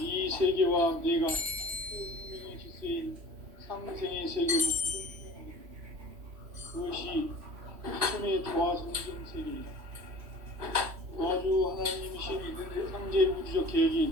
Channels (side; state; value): left; late; 3.1 ms